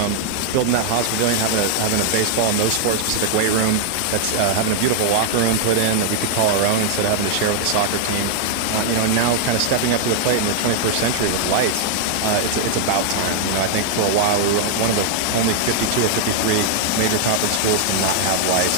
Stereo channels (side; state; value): both; different; correlation 0.00